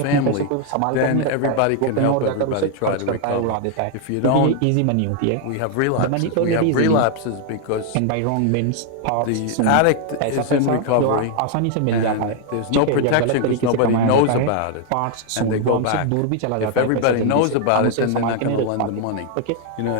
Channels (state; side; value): different; both; correlation 0.00